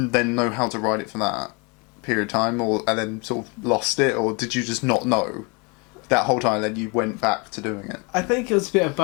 know how to ride it for that period of time, and then sort of lost it, or did you just not know that whole time? Then you went back to doing it. I think it was a bit of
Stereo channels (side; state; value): right; quieter; 30.8 dB